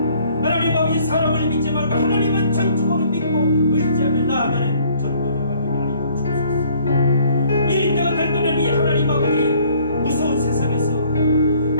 하나님 아버지 사람을 믿지 말고 하나님은 전적으로 믿고 의지하며 나아가는 전도자가 되게 하여 주옵소서. 이 때가 될 때는 이 하나님 아버지 무서운 세상에서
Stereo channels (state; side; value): inverted; both; correlation -0.59